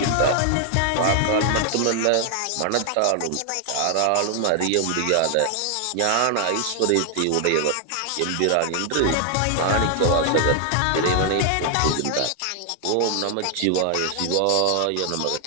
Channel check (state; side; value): different; both; correlation 0.00